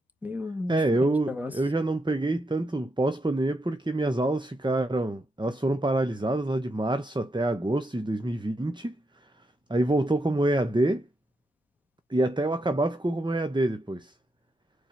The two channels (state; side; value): normal; both; correlation 0.82